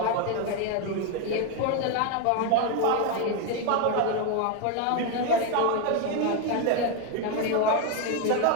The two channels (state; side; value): different; both; correlation 0.01